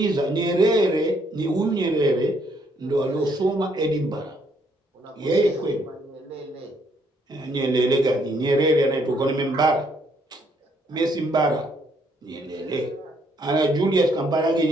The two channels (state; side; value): normal; both; correlation 0.69